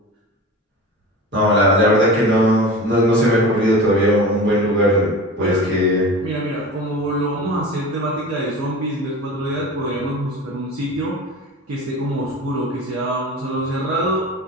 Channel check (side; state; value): both; normal; correlation 0.34